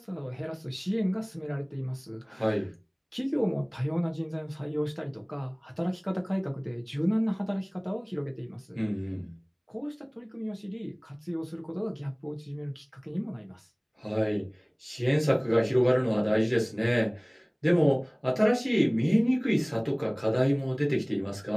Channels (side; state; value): both; identical; correlation 1.00